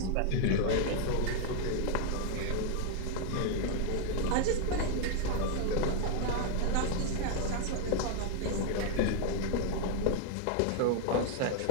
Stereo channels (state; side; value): different; both; correlation 0.00